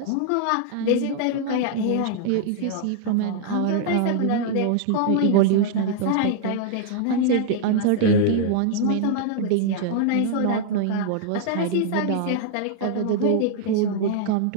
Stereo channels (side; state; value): both; different; correlation -0.01